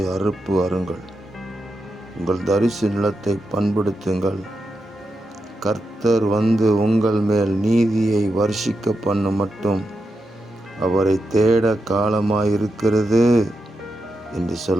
அறுப்பு அருங்கள். உங்கள் தரிசு நிலத்தை பண்படுத்துங்கள். கர்த்தர் வந்து உங்கள் மேல் நீதியை வர்ஷிக்க பண்ணும் மட்டும் அவரை தேட காலமாயிருக்கிறது என்று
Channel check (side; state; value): both; normal; correlation 0.87